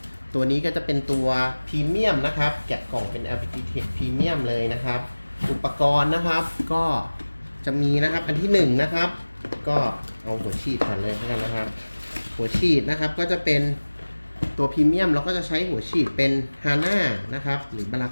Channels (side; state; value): both; inverted; correlation -1.00